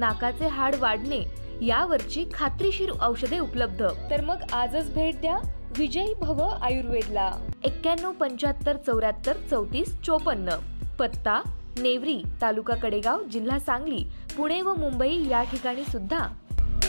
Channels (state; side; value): inverted; both; correlation -1.00